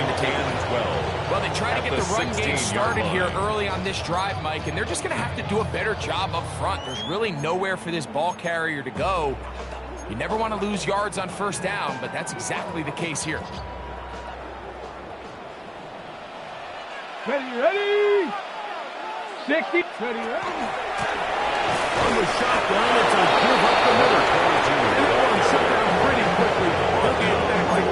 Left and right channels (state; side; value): identical; both; correlation 1.00